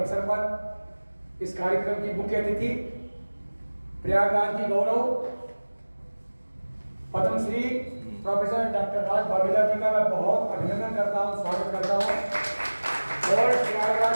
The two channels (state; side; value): inverted; both; correlation -1.00